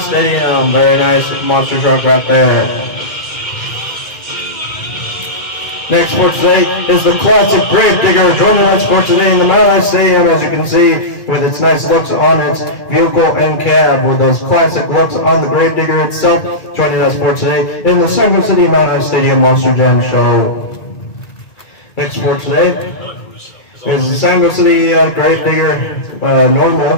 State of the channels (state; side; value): late; right; 2.3 ms